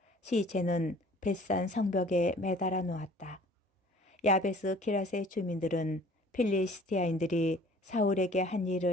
시체는 벳산 성벽에 매달아 놓았다. 야베스 기라세 주민들은 필리스티아인들이 사울에게 한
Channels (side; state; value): both; normal; correlation 0.51